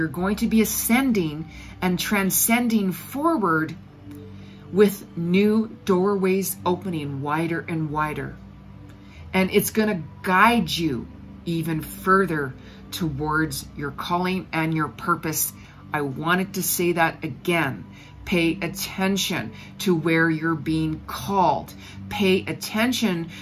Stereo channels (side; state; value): both; identical; correlation 1.00